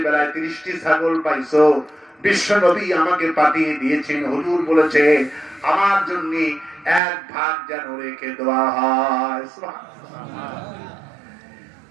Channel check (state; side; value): drops out; left; at 7.0 s